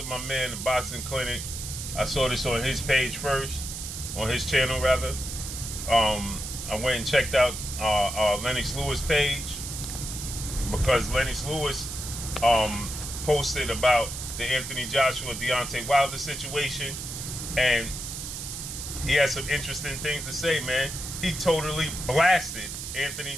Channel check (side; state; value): right; noise; hiss, 7 dB below the sound